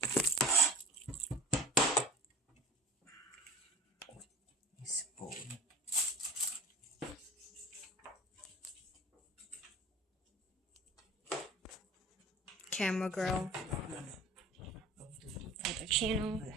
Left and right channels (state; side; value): normal; both; correlation 0.37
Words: Spoon. Camera girl. Other channel.